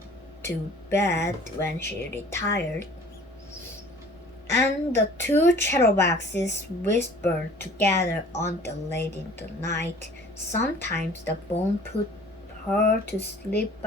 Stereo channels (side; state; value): both; normal; correlation 0.48